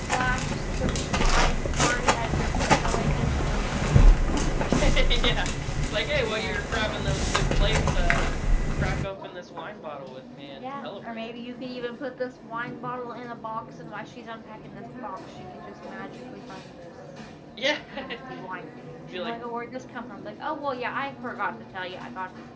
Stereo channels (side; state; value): both; identical; correlation 1.00